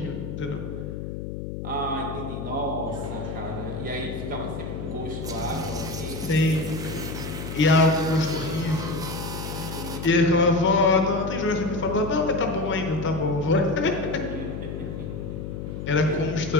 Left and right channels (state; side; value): noise; left; hum, 6 dB below the sound